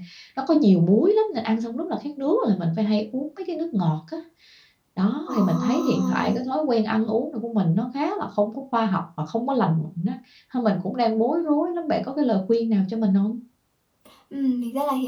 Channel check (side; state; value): both; identical; correlation 1.00